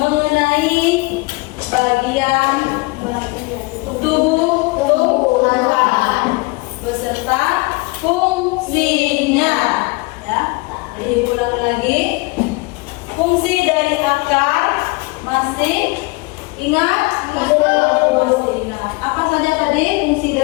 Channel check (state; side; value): quieter; right; 25.6 dB